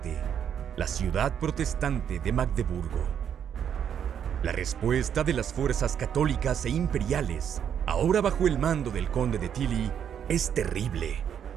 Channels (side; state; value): left; quieter; 8.7 dB